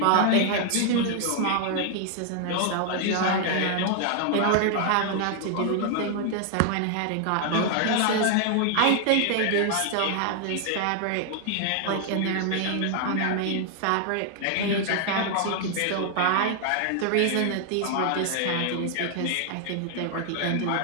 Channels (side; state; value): both; different; correlation 0.00